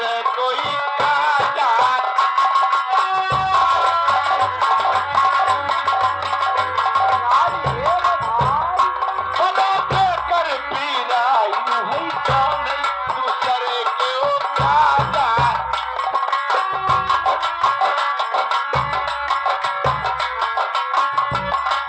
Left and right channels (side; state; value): both; identical; correlation 1.00